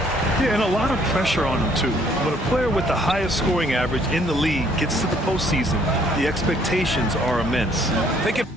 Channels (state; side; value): normal; both; correlation 0.63